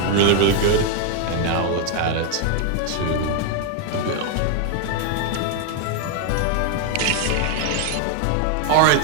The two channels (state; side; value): different; both; correlation 0.01